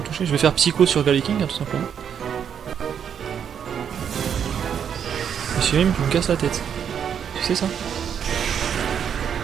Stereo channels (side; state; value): left; quieter; 8.1 dB